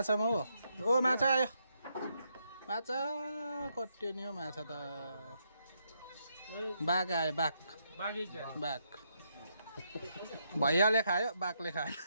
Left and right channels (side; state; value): both; inverted; correlation -0.78